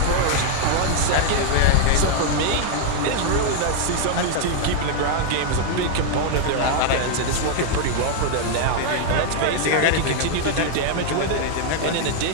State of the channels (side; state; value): both; different; correlation 0.00